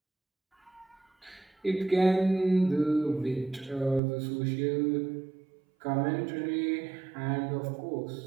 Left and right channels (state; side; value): drops out; left; at 4.0 s